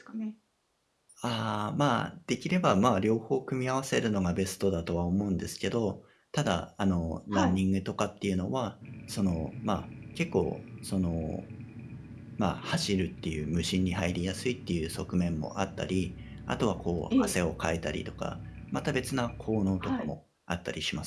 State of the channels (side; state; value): both; identical; correlation 1.00